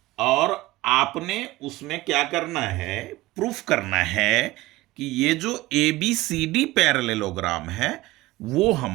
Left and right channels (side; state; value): left; quieter; 18.8 dB